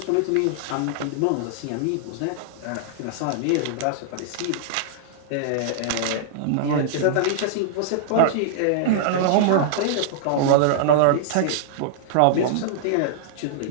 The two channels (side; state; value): both; different; correlation -0.01